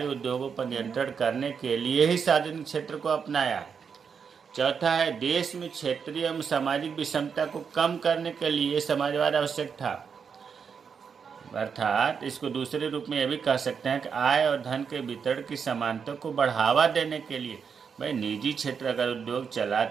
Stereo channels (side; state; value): left; quieter; 6.4 dB